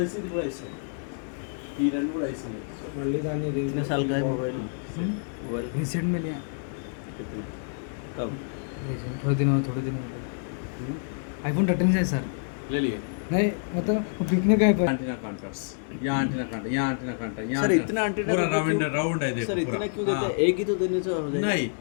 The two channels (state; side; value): silent; right; digital silence